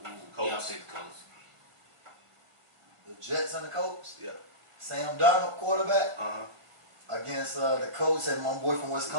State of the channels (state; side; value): late; left; 1.5 ms